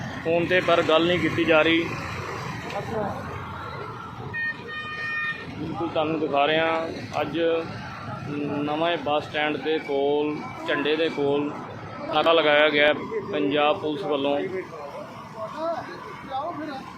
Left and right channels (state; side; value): identical; both; correlation 1.00